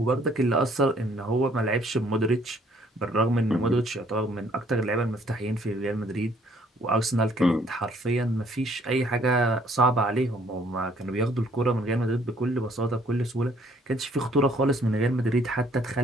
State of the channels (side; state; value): both; normal; correlation 0.62